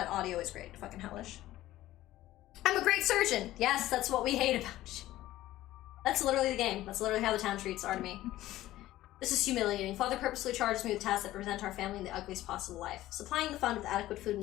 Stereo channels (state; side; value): quieter; right; 15.3 dB